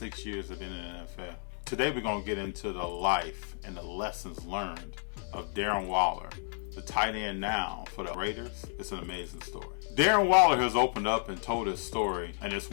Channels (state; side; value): silent; right; 56 dB below the other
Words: years of being in the NFL? Today we're going to get into the life and the lessons learned of Darren Waller, the tight end now for the Raiders. It's an amazing story. Darren Waller has opened up and told his story, and it's